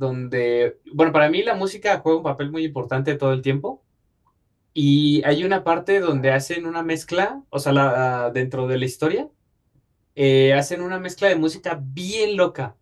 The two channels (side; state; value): both; identical; correlation 1.00